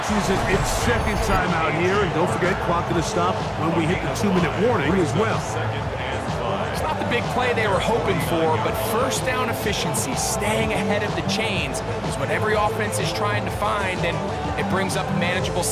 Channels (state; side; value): identical; both; correlation 1.00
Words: uses its second timeout here, and don't forget, clock going to stop when we hit the 2-minute warning as well. It's not the big play they were hoping for, but first down efficiency, staying ahead of the chains, is what every offense is trying to find, and it brings up a manageable